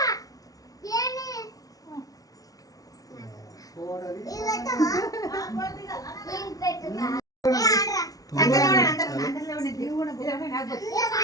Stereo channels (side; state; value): right; late; 0.18 ms